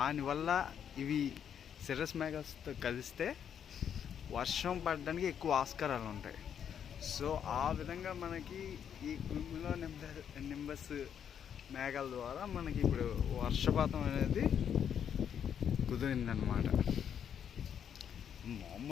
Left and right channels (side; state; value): right; quieter; 8.5 dB